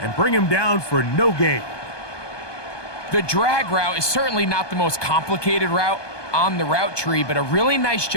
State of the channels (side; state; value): right; late; 1.2 ms